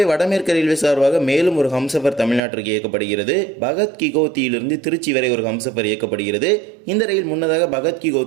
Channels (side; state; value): left; drops out; at 2.4 s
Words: வடமேற்கு ரயில்வே சார்பாக மேலும் ஒரு ஹம்சஃபர் தமிழ்நாட்டிற்கு இயக்கப்படுகிறது. பகத் கி கோத்தியிலிருந்து திருச்சி வரை ஒரு ஹம்சஃபர் இயக்கப்படுகிறது. இந்த ரயில் முன்னதாக பகத் கி